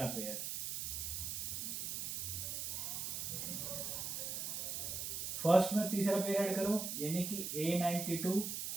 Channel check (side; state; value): right; noise; hiss, 3 dB below the sound